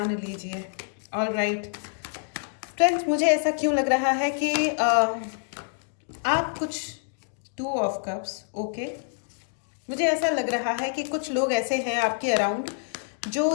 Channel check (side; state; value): right; silent; digital silence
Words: लीजिए। ऑल राइट फ्रेंड्स, मुझे ऐसा क्यों लग रहा है कि आप कुछ टू ऑफ कप्स, ओके। मुझे ऐसा लग रहा है कि कुछ लोग ऐसे हैं आपके अराउंड जो